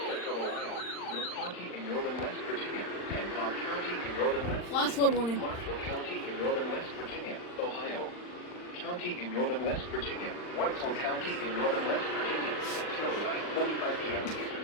Central Ohio, North County in northern West Virginia, Hancock County in northern West Flash flood warning. Marshall County in northern West Virginia, Ohio. County in northern West Virginia, Wetzel County in northern West Virginia, Carolina, 45 p.m. Eastern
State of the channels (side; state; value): right; late; 39 ms